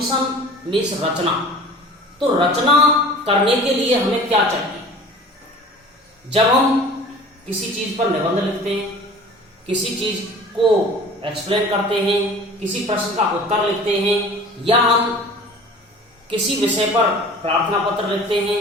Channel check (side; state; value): both; normal; correlation 0.43